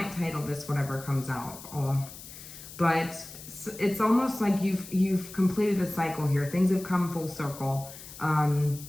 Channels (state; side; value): noise; left; hiss, 15 dB below the sound